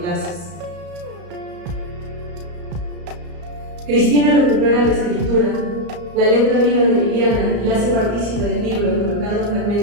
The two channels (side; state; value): left; late; 34 ms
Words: Cristina recupera la escritura, la letra viva de Liliana y la hace partícipe del libro, colocando